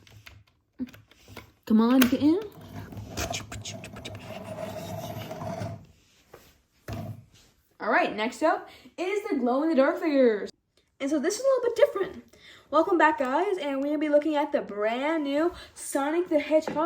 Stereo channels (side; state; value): both; identical; correlation 1.00